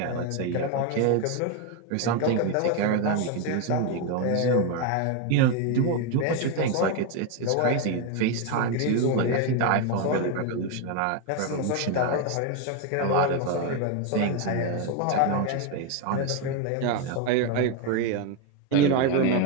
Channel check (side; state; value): both; different; correlation 0.02